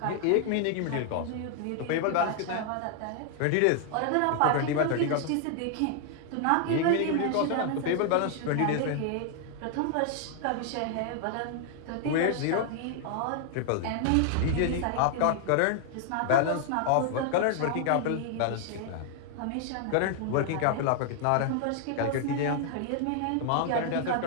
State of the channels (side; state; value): both; different; correlation 0.00